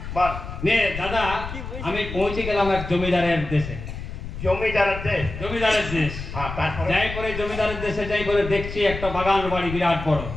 বল। নে দাদা, আমি পৌঁছে গেলাম এক জমিদারের দেশে। জমিদারের দেশ? জমিদারের দেশ। হ্যাঁ তারপরে? যাই করে জমিদারের দেশে যাই করে দেখছি একটা বাগান বাড়ি বিরাট বড়।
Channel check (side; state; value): left; noise; rumble, 8 dB below the sound